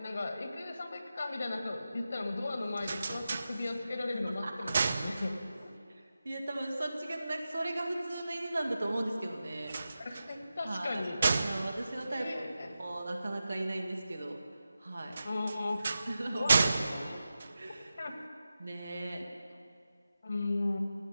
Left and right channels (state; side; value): inverted; both; correlation -0.92